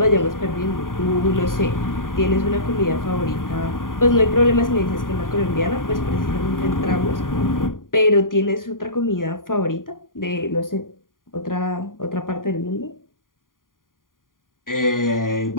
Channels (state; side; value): late; right; 0.90 ms